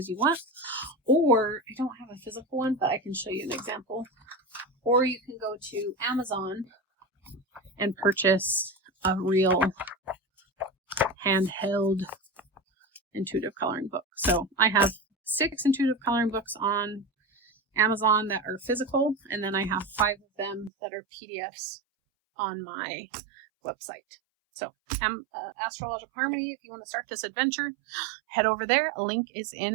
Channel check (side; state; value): left; drops out; at 20.7 s